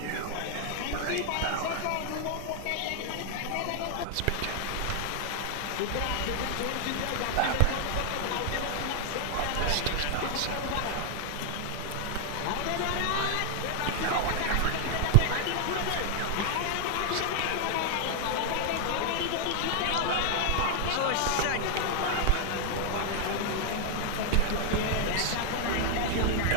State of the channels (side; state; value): both; different; correlation 0.00